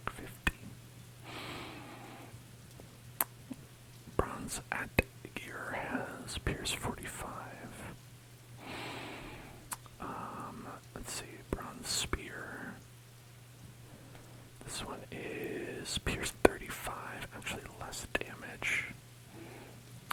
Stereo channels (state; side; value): identical; both; correlation 1.00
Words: 50. Bronze at gear has pierce 45. Let's see, bronze spear. This one is pierce 35, actually less damage.